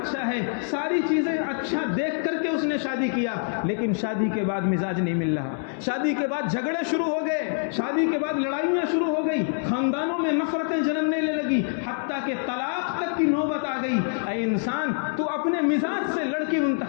ہے، ساری چیزیں اچھا دیکھ کر کے اس نے شادی کیا، لیکن شادی کے بعد مزاج نہیں مل رہا، شادی کے بعد جھگڑے شروع ہو گئے، شادی کے بعد لڑائیاں شروع ہو گئی، خاندانوں میں نفرتیں جنم لینے لگی، حتیٰ کہ طلاق تک کی نوبت آ گئی۔ اے انسان، تو اپنے مزاج سے لڑکی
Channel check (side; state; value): right; silent; 61 dB below the other